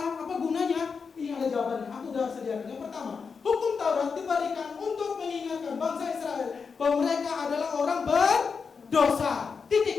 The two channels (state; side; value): quieter; right; 5.5 dB